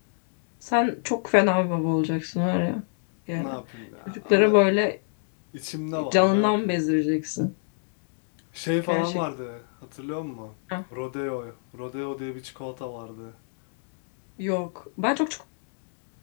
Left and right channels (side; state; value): right; silent; digital silence